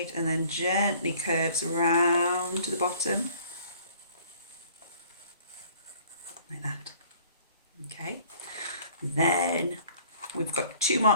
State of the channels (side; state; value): both; inverted; correlation -0.54